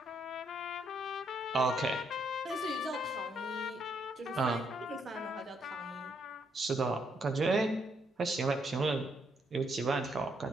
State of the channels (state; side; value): normal; both; correlation 0.74